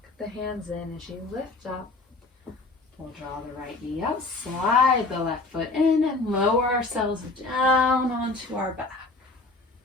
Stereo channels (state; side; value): quieter; right; 3.3 dB